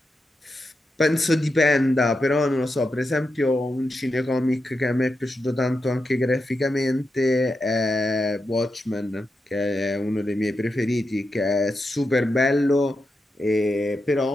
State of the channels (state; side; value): normal; both; correlation 0.87